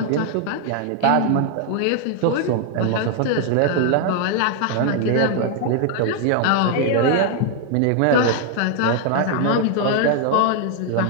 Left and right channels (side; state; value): both; different; correlation 0.00